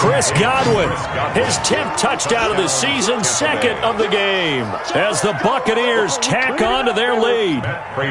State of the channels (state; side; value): identical; both; correlation 1.00